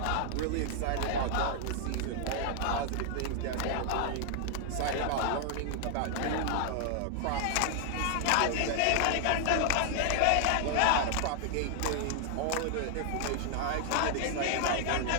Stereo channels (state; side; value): different; both; correlation 0.00